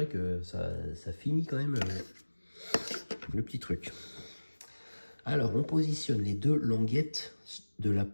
que ça finit quand même le petit truc. Alors, on positionne les deux languettes de la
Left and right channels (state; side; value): inverted; both; correlation -1.00